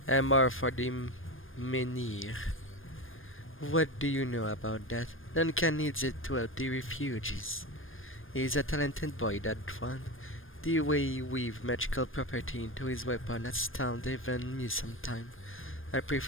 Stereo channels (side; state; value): right; late; 0.59 ms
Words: Amor for the Menhir. What do you know about that? Duncan needs it to help the refugees. He's a talented boy, that one. The way he weaves magical property into his weapon astounds even me sometime. I